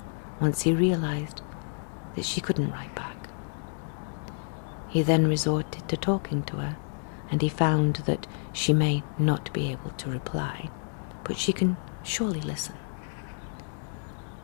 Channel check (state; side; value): silent; right; digital silence